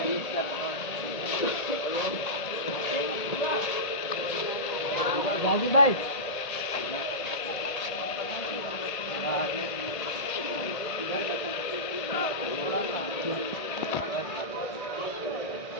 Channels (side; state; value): right; late; 1.8 ms